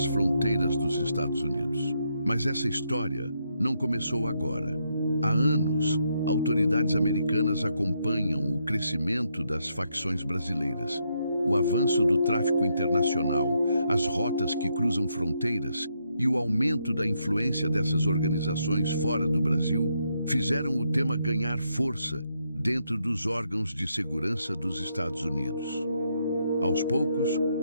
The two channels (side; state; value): both; inverted; correlation -0.78